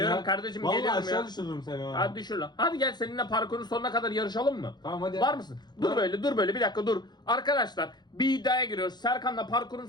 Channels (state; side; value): late; right; 0.21 ms